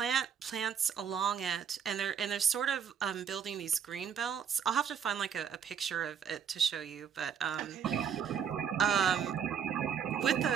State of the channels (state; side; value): quieter; left; 7.6 dB